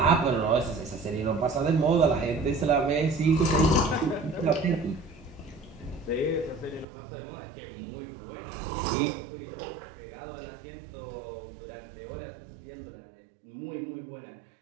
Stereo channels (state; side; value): drops out; left; at 6.9 s